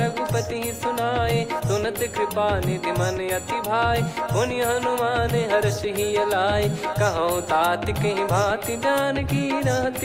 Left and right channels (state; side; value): identical; both; correlation 1.00